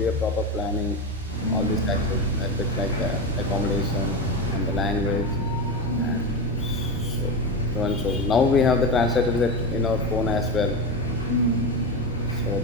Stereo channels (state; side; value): normal; both; correlation 0.18